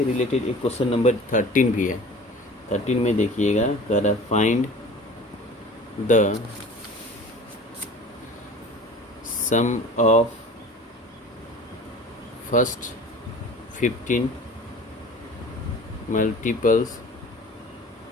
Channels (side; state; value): both; normal; correlation 0.42